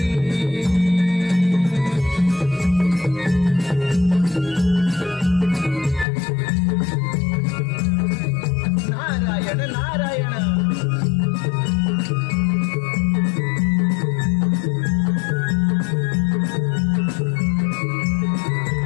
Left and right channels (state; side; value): drops out; right; at 6.1 s